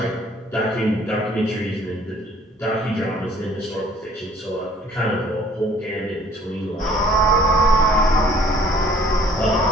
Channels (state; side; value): normal; both; correlation 0.56